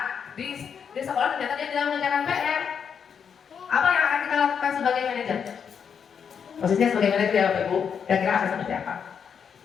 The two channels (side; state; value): right; quieter; 7.1 dB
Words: di sekolah ternyata dia tidak mengerjakan PR, apa yang akan kita lakukan sebagai manajer? Posisinya sebagai manajer ya Bapak Ibu, kira-kira akan seperti apa?